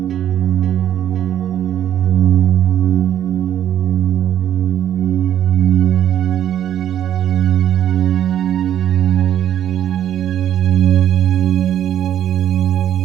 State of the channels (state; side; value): quieter; left; 10.7 dB